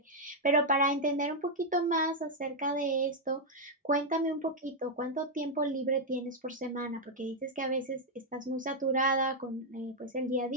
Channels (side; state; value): both; normal; correlation -0.01